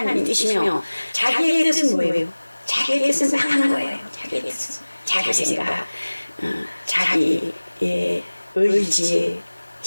뜻이며 자기의 뜻은 뭐예요? 자기의 뜻은 딱 하는 거예요. 자기의 뜻은 자기 생각, 자기의 의지,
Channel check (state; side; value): inverted; both; correlation -1.00